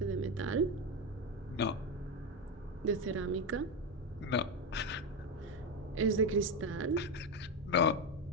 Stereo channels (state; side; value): normal; both; correlation 0.11